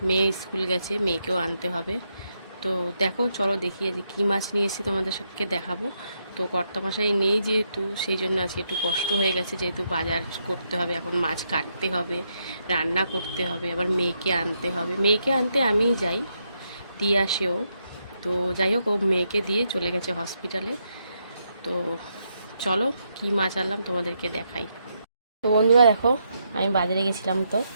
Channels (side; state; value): both; inverted; correlation -0.80